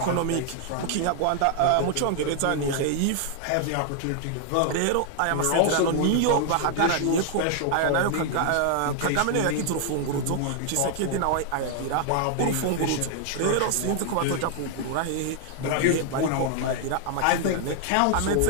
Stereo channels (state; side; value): different; both; correlation 0.00